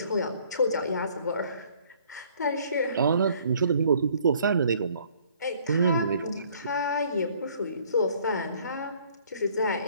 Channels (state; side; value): inverted; both; correlation -0.59